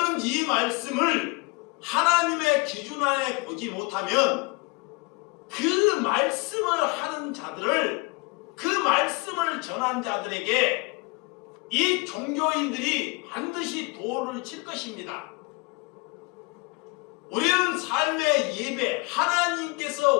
이 말씀을 하나님의 기준 안에 보지 못하면 그 말씀을 하는 자들을, 그 말씀을 전한 자들에게 이 종교인들이 반드시 도를 칠 것입니다. 우리는 삶의 예배,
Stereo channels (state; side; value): quieter; right; 28.2 dB